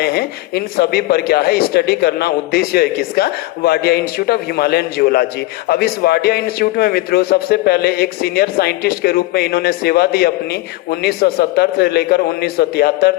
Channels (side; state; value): right; quieter; 18.7 dB